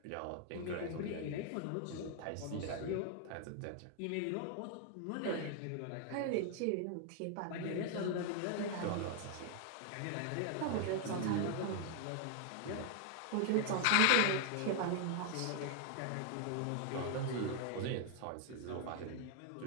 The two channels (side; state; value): both; different; correlation 0.00